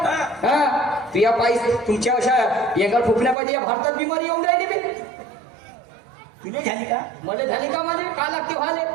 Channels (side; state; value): left; drops out; at 3.4 s